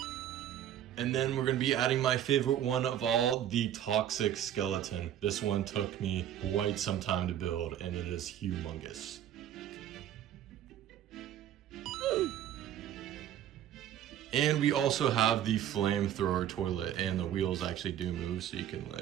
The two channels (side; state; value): left; quieter; 10.9 dB